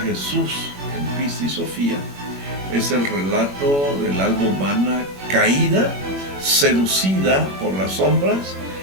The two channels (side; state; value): left; late; 21 ms